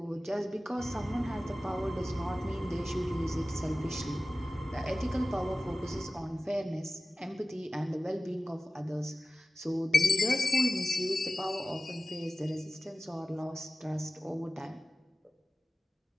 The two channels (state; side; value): normal; both; correlation 0.96